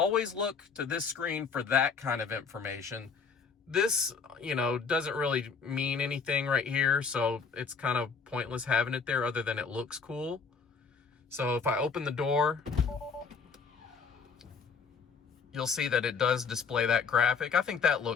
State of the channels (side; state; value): right; quieter; 5.5 dB